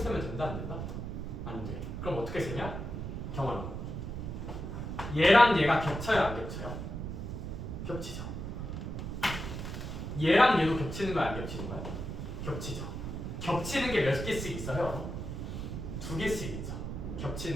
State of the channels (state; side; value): noise; right; rumble, 5 dB below the sound